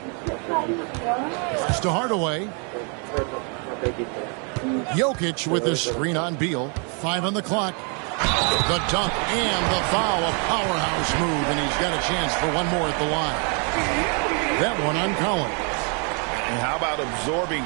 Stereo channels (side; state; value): left; quieter; 37.4 dB